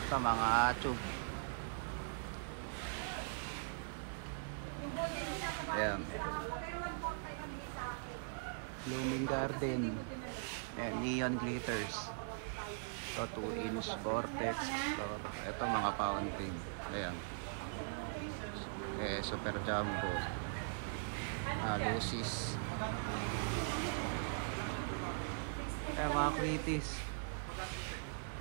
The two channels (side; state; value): left; silent; digital silence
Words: Ito mga tube. Ayan, Blooming Garden, and Neon Glitters. Ito 2-inch Vortex. Ito mga fountain. Ayan, Super Jumbo, Lucis. Ayan, mga Quitis.